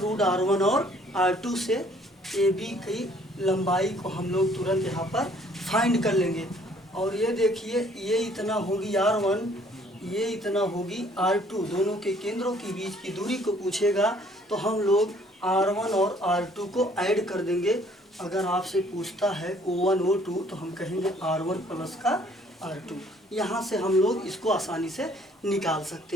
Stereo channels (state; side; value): normal; both; correlation 0.60